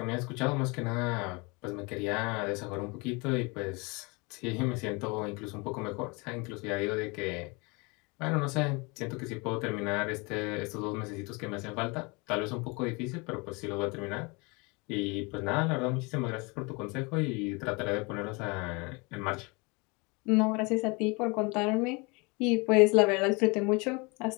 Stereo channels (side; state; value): right; quieter; 28.3 dB